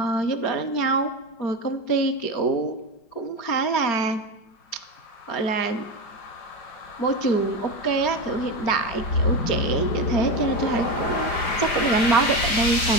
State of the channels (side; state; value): right; late; 4.9 ms